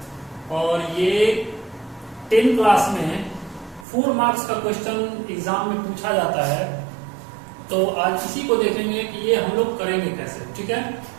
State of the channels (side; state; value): left; drops out; at 3.9 s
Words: और ये 10 class में 4 मार्क्स का क्वेश्चन एग्जाम में पूछा जाता है। तो आज इसी को देखेंगे कि ये हम लोग करेंगे कैसे। ठीक है,